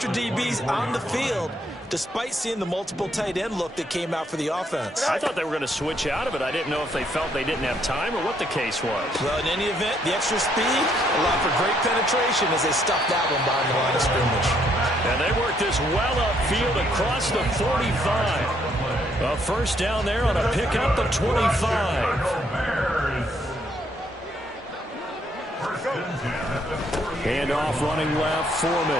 DBs on the field despite seeing the multiple tight end look that came out for the offense. I thought they were going to switch out of it. I didn't know if they felt they didn't have time or what the case was. Well, in any event, the extra speed allowed for great penetration as they stuffed that one behind the line of scrimmage. And they worked this well upfield across the 45. A first down there on a pickup of 25. Hand off running left,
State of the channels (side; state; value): both; normal; correlation 0.70